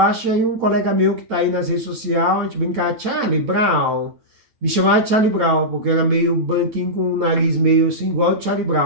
e aí um colega meu que tá aí nas redes sociais, a gente brincava, Charlie Brown, me chamava de Charlie Brown, porque eu era meio branquinho com o nariz meio assim, igual o Charlie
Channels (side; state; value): left; late; 9.0 ms